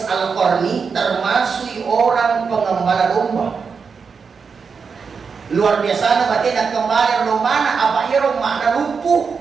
Al-Qarni termasuk orang pengembala domba. Luar biasa na batin at kembali romana apa irong makna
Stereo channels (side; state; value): left; quieter; 5.6 dB